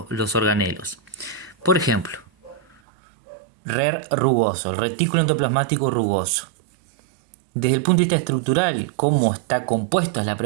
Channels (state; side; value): drops out; left; at 2.8 s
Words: organelos. Por ejemplo, RER rugoso, el retículo endoplasmático rugoso. Desde el punto de vista estructural, ¿cómo está compuesta es la